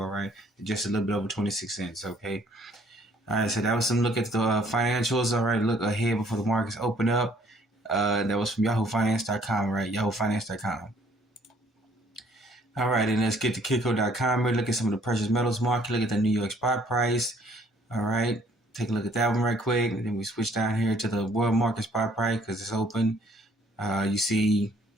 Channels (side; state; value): both; normal; correlation 0.61